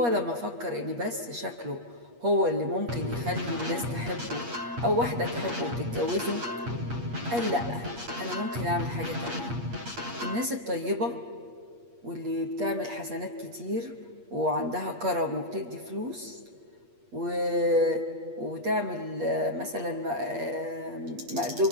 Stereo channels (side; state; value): left; late; 8.4 ms